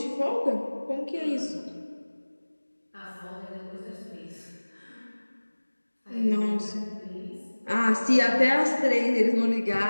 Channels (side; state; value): both; inverted; correlation -1.00